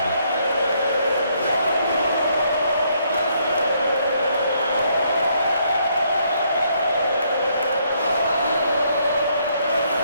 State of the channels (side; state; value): both; inverted; correlation -0.71